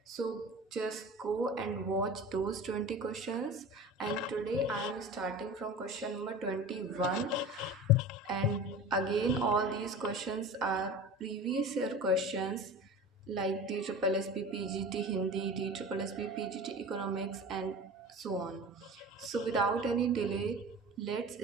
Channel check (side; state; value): both; normal; correlation 0.35